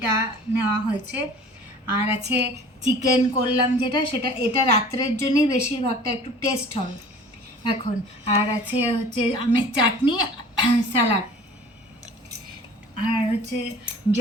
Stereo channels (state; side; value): normal; both; correlation 0.45